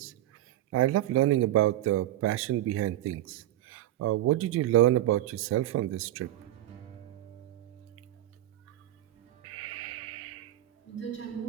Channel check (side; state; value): left; quieter; 13.9 dB